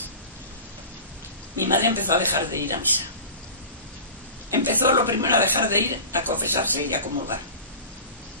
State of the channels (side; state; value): both; inverted; correlation -0.36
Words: mi madre empezó a dejar de ir a misa. Empezó lo primero a dejar de ir a confesarse y a comulgar.